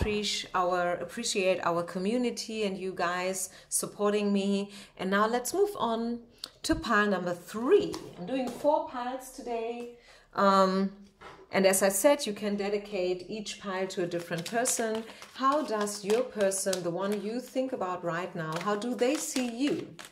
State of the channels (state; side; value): identical; both; correlation 1.00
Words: our community and you guys supporting me. And now let's move on to pile number 3. I'm doing 4 piles today. And as I said, you can dedicate each pile to a different person. How does your person, the one you think about right now, how do they see you?